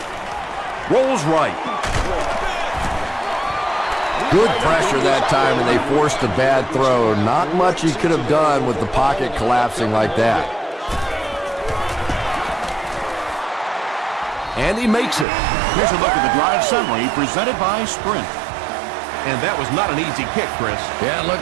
Rolls right. Good pressure that time, and they forced a bad throw. Not much he could have done with the pocket collapsing like that. And he makes it. Here's a look at the drive summary presented by Sprint. And that was not an easy kick, Chris. Yeah, it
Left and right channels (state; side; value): drops out; left; at 15.2 s